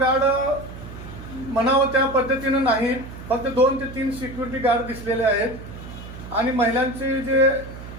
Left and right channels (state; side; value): noise; right; hum, 13 dB below the sound